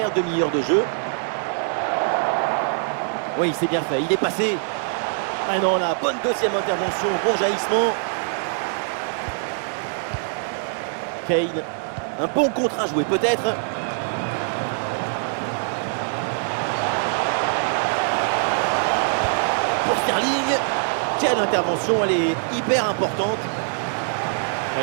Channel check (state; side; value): silent; left; digital silence